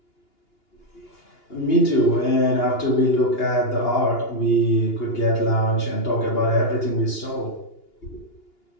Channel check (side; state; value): right; late; 2.9 ms